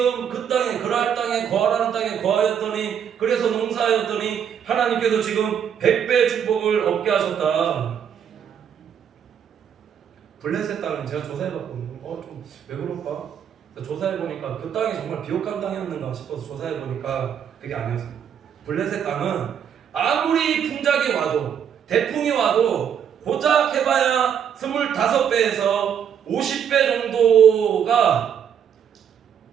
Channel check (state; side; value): quieter; left; 8.4 dB